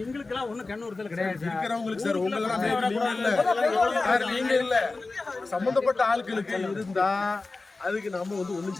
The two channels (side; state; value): right; quieter; 3.6 dB